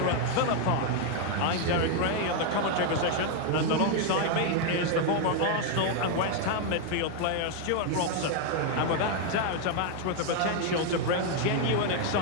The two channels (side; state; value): both; different; correlation 0.01